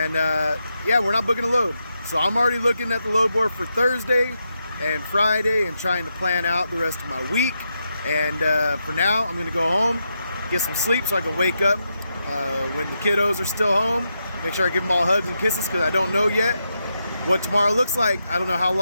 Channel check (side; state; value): both; inverted; correlation -0.84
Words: yeah, we're not booking a load. So I'm already looking at the load board for Thursday and Friday and trying to plan out the rest of my week. And for now, I'm gonna go home, get some sleep so I can wake up when the kiddos are still home. Make sure I give them all hugs and kisses, because I don't know yet what tomorrow looks like. I don't know how